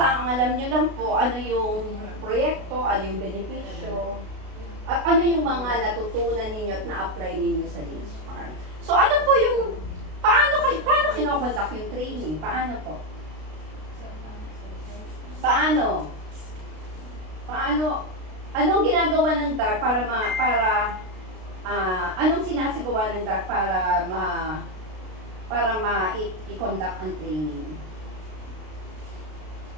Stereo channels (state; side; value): late; left; 32 ms